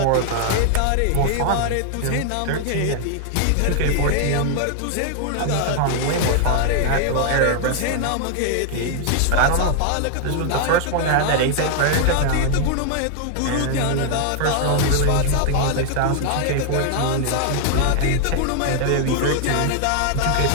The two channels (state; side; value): different; both; correlation 0.00